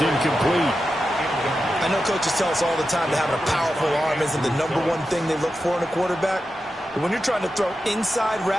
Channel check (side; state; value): both; normal; correlation 0.90